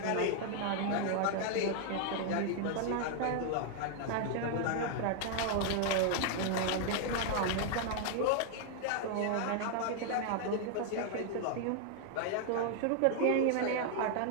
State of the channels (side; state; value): both; different; correlation 0.00